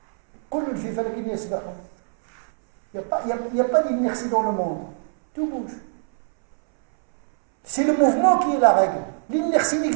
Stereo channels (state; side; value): silent; left; 62 dB below the other